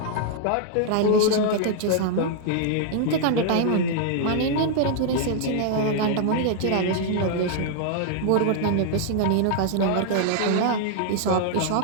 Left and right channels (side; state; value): both; different; correlation -0.01